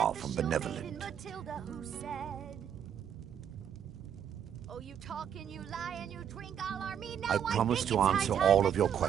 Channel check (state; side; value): quieter; left; 8.9 dB